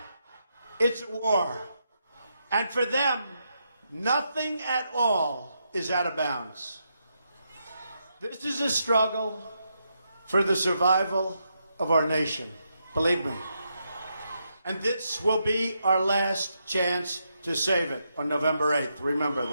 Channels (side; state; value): both; inverted; correlation -0.82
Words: it's war. And for them, nothing at all is out of bounds. This is a struggle for the survival of our nation, believe me. And this will be our last chance to save it on November 8th. Remember